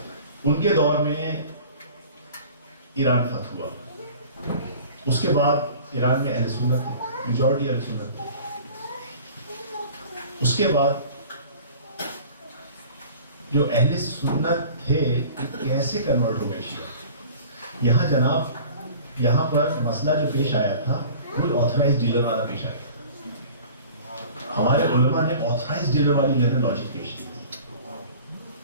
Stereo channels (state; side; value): inverted; both; correlation -0.44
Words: ان کے دور میں ایران فتح ہوا, اس کے بعد ایران میں اہل سنت تھے, میجورٹی اہل سنت تھے. اس کے بعد جو اہل سنت تھے کیسے کنورٹ ہو گئے شیعہ. یہاں جناب, یہاں پر مسئلہ جو پیش آیا تھا وہ آتھورائز ڈیلر والا پیش آیا تھا. ہمارے علماء نے آتھورائز ڈیلر والی جو ہے لاجک پیش کی تھی.